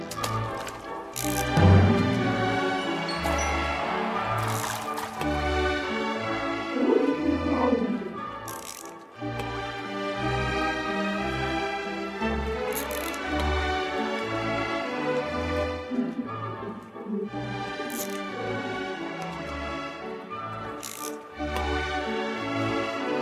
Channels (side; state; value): both; identical; correlation 1.00